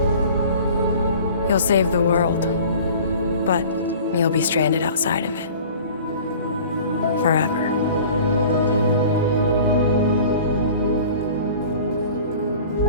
You'll save the world, but you'll be stranded outside of it. Forever.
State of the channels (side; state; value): both; inverted; correlation -0.44